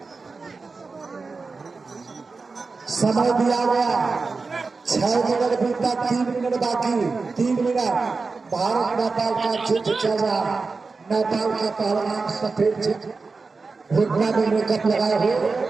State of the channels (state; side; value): quieter; left; 4.2 dB